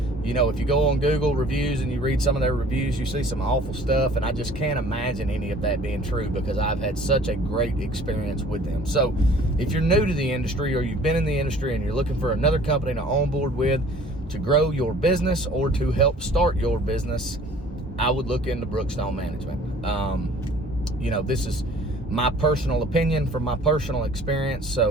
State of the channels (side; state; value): both; normal; correlation 0.51